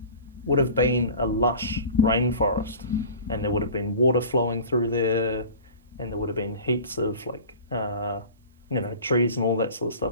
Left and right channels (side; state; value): both; inverted; correlation -0.40